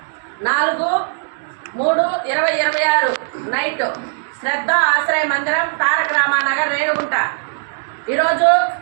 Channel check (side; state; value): left; silent; digital silence